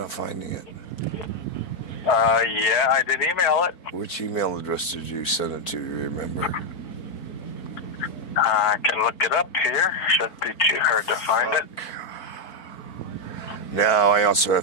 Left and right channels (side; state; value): right; late; 4.4 ms